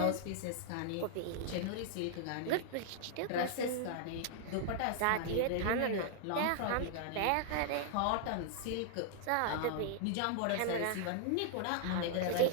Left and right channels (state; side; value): different; both; correlation -0.01